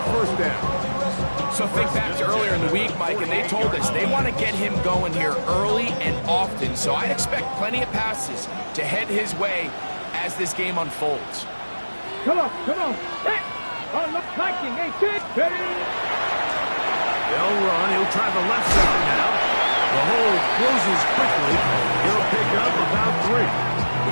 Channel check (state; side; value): inverted; both; correlation -1.00